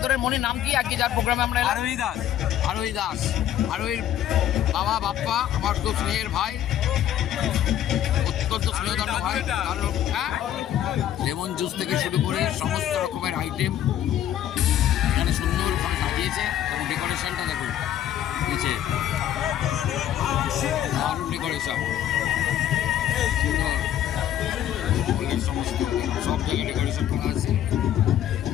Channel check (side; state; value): right; quieter; 11.2 dB